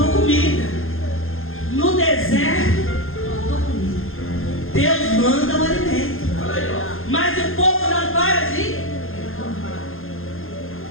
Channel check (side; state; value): right; late; 0.60 ms